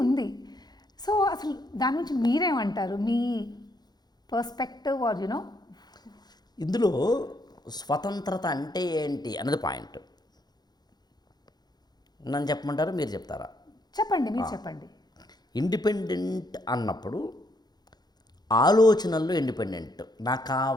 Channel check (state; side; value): late; right; 0.20 ms